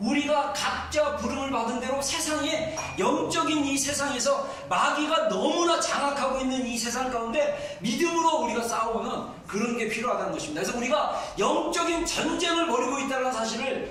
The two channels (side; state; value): both; identical; correlation 1.00